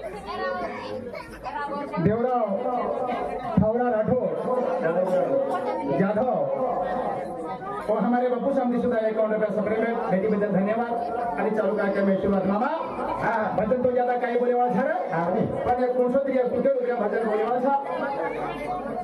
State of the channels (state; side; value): identical; both; correlation 1.00